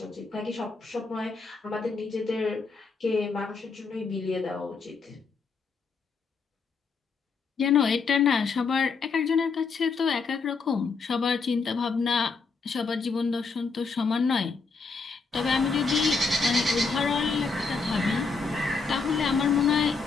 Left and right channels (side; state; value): right; quieter; 4.6 dB